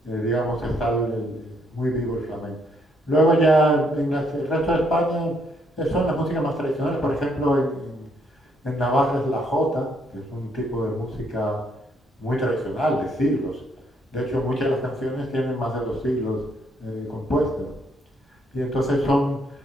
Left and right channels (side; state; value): both; normal; correlation 0.71